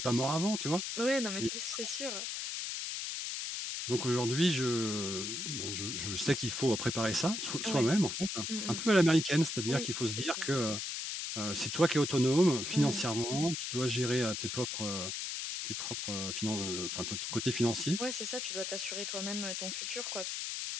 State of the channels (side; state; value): left; noise; hiss, 3 dB below the sound